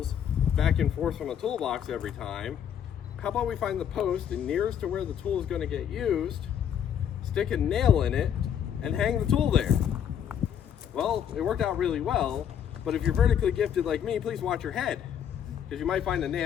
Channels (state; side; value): quieter; right; 8.9 dB